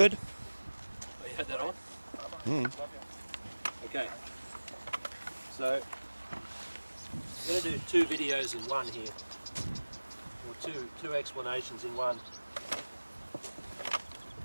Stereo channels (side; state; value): both; inverted; correlation -1.00